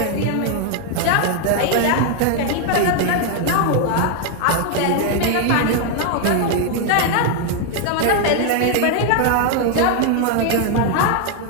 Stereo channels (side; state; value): both; different; correlation 0.00